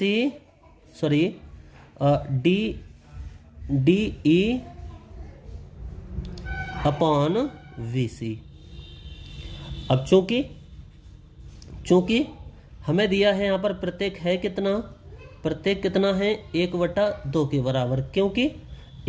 अब चूंकि हमें दिया है यहाँ पर प्रत्येक है कितना, प्रत्येक कितना है, 1/2 के बराबर। क्योंकि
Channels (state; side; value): identical; both; correlation 1.00